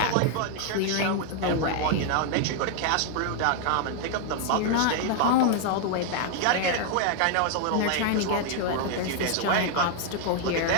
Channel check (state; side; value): different; both; correlation 0.00